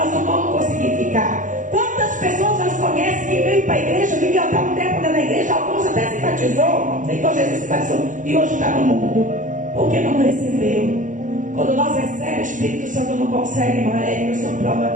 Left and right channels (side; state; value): left; late; 0.37 ms